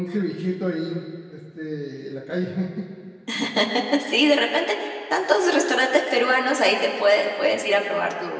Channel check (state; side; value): identical; both; correlation 1.00